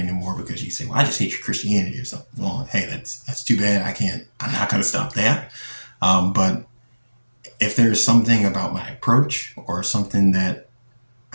because you say, well, I just hate your Christianity or something. Well, hey, that's too bad. I'm not going to stop that. But if there's something about my approach or something that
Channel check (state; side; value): inverted; both; correlation -1.00